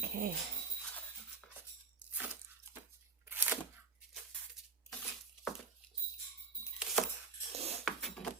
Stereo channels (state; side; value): quieter; left; 5.0 dB